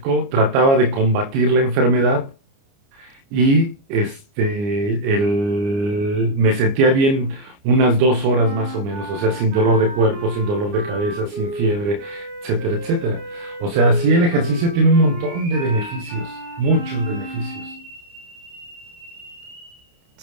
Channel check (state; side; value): late; left; 29 ms